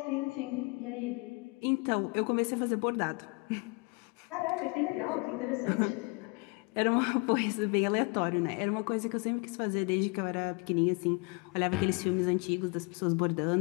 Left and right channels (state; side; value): quieter; right; 30.0 dB